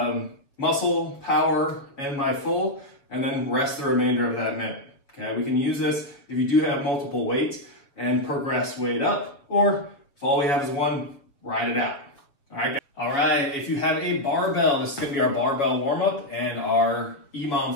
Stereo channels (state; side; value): late; right; 7.2 ms